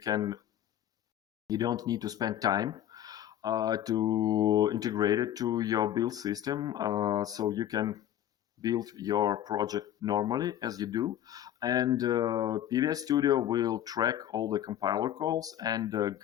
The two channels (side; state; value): right; quieter; 11.6 dB